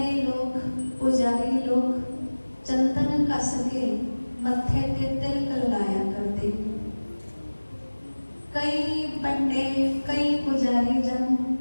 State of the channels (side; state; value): both; inverted; correlation -1.00